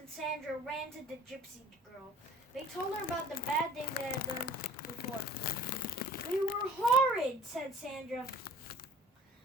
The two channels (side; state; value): both; normal; correlation 0.49